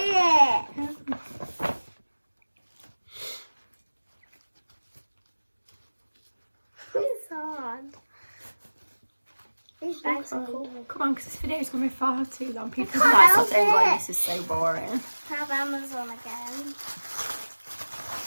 it. It's hard. These bags are cool. Come on, because this video is going to be far too long. People can't are like help sitting going, it. this is so boring. Have Amazon again.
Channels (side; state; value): both; inverted; correlation -1.00